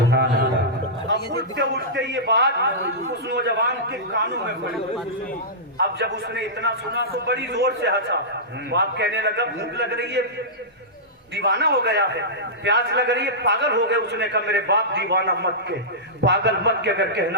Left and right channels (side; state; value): both; normal; correlation -0.15